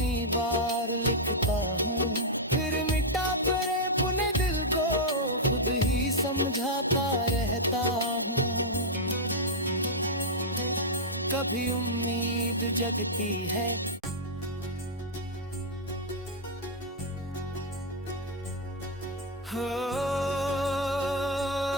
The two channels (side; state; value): both; normal; correlation -0.04